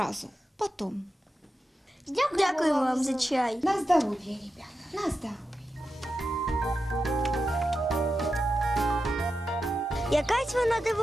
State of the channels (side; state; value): both; normal; correlation 0.89